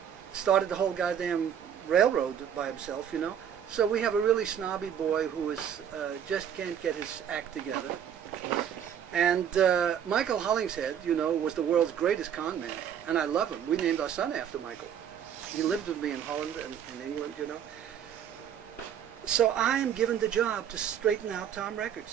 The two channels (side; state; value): left; quieter; 8.9 dB